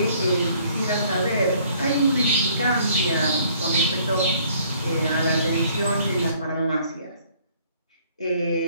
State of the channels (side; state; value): both; inverted; correlation -0.60